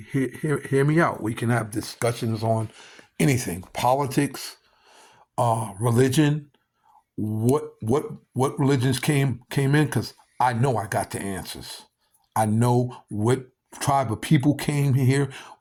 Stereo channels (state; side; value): identical; both; correlation 1.00